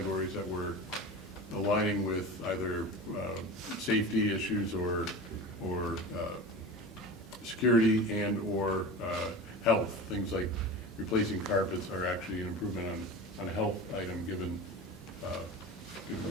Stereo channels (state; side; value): normal; both; correlation 0.31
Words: that were aligning with either safety issues or security and or health. Things like replacing carpets are actually an improvement on a health item given